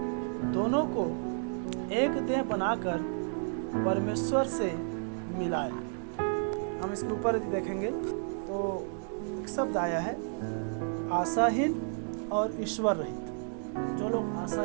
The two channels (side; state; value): left; silent; 57 dB below the other